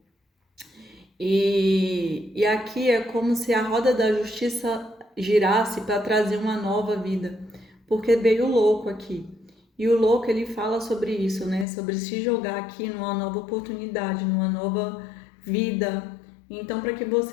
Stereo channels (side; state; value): right; drops out; at 11.7 s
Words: E aqui é como se a roda da justiça girasse para trazer uma nova vida, porque veio o louco aqui. E o louco ele fala sobre isso, né? Sobre se jogar aqui numa nova oportunidade, numa nova vida. Então, para que